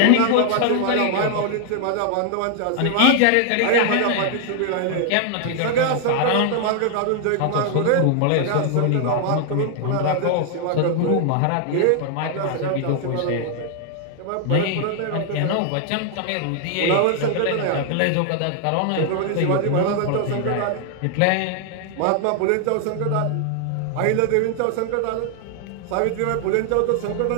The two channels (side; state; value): both; different; correlation 0.00